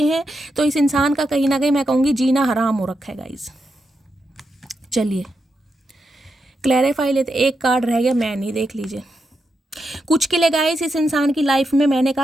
हैं। तो इस इंसान का कहीं ना कहीं मैं कहूँगी जीना हराम हो रखा है गाइस। चलिए क्लैरिफाई लेते, एक कार्ड रह गया, मैं नहीं, देख लीजिए। कुछ के लिए गाइस इस इंसान की लाइफ में मैंने कहा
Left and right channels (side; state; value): both; normal; correlation 0.85